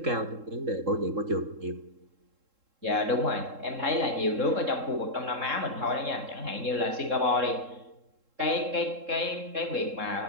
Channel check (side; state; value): left; late; 3.7 ms